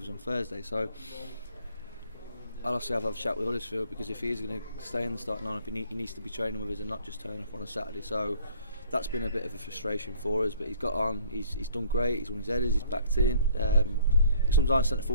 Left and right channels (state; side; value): inverted; both; correlation -0.57